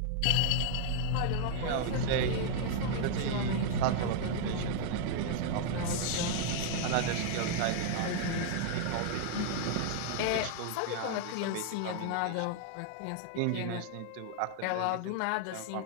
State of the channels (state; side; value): different; both; correlation -0.01